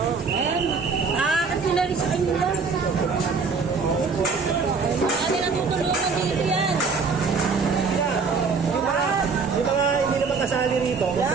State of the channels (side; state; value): left; quieter; 4.9 dB